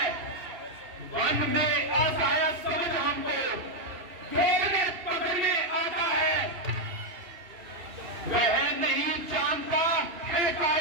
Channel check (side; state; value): left; late; 2.8 ms